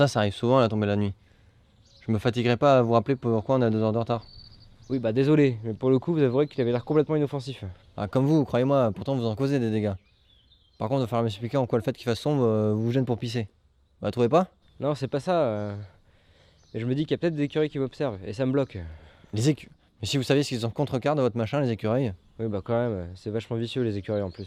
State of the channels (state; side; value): identical; both; correlation 1.00